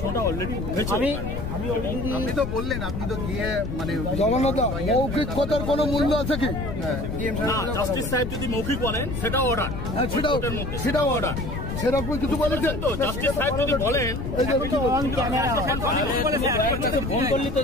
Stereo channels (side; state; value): left; noise; rumble, 5 dB below the sound